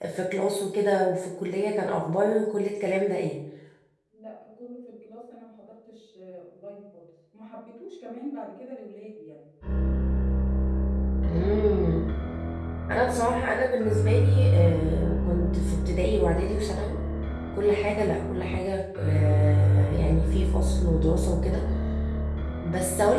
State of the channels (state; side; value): identical; both; correlation 1.00